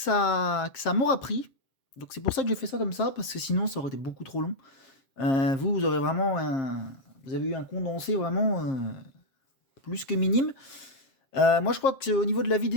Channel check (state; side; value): late; right; 7.5 ms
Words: m'aura pris. Donc c'est pour ça que j'ai fait ça comme ça, parce que sinon ça aurait été beaucoup trop long. Vous aurez vraiment vous avez eu un condensé vraiment plus que minime. Moi je crois qu'au niveau de la